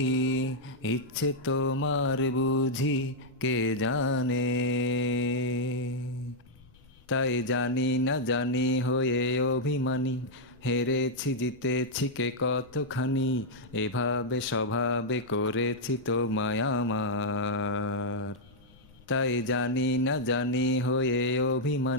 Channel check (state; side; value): noise; left; rumble, 27 dB below the sound